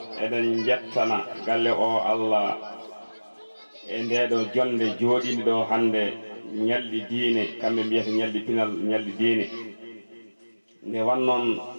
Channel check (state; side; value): inverted; both; correlation -1.00